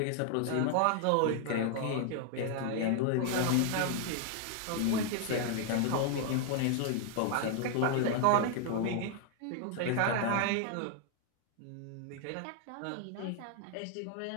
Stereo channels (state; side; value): different; both; correlation 0.00